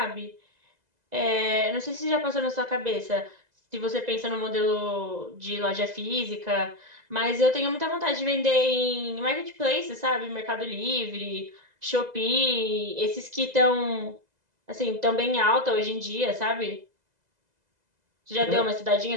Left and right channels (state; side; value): late; left; 2.0 ms